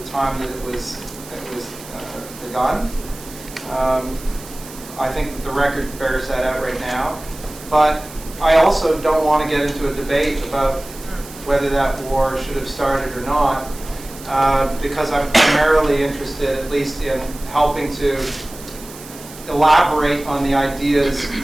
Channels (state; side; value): noise; right; hiss, 17 dB below the sound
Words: the time that it was begun. I think that the record bears that out right now. But I also don't want to get into a debate about whether that war should have started or not, because I'm primarily interested, at least, in helping to elaborate on the ideas